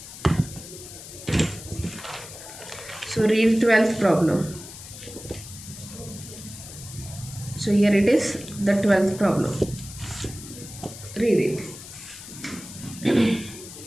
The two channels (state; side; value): noise; left; hiss, 14 dB below the sound